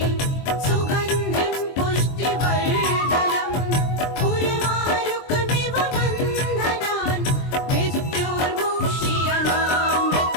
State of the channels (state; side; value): late; right; 23 ms